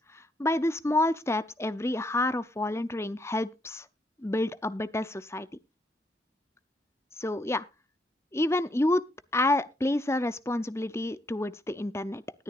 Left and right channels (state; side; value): normal; both; correlation 0.74